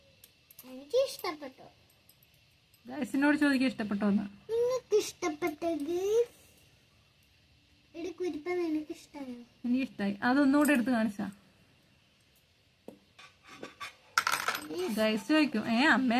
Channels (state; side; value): identical; both; correlation 1.00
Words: എനിക്ക് ഇഷ്ടപ്പെട്ടു. ഗൈസിനോട് ചോദിക്കാൻ ഇഷ്ടപ്പെട്ടോന്ന്. നിങ്ങൾക്ക് ഇഷ്ടപ്പെട്ടത് കുരിപ്പ നിനക്ക് ഇഷ്ടമായോ? എനിക്ക് ഇഷ്ടമായി. അതൊന്നുകൂടെ എടുത്ത് കാണിച്ചാ ഗൈസ് ചോദിക്കും